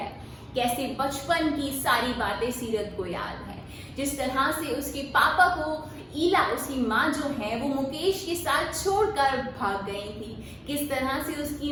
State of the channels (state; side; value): identical; both; correlation 1.00